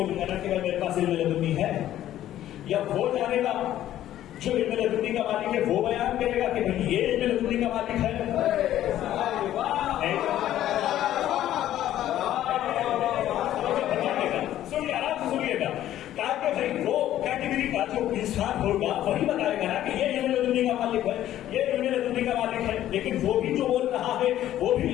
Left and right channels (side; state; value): right; quieter; 12.6 dB